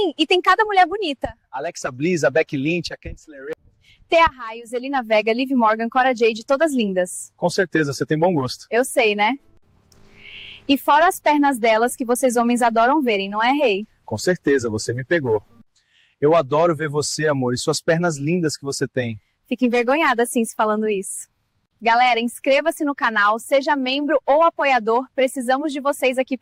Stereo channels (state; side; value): identical; both; correlation 1.00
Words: e tem cada mulher bonita. Alexa Bliss, a Becky Lynch, a Candice LeRae. Thea Raios, Zelina Vega, Liv Morgan, Cora Jade, todas lindas. Com certeza, você tem bom gosto. Eu sei, né? E fora as pernas delas que vocês homens adoram verem, não é, rei? Com certeza, você me pegou. Eu adoro ver você, amor, e suas pernas lindas que você tem. Fico envergonhada, assim, se falando isso. Galera, inscreva-se no canal, seja membro ou apoiador, precisamos de vocês aqui